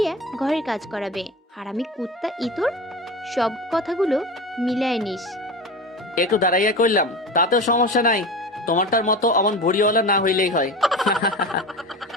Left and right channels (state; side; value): normal; both; correlation 0.29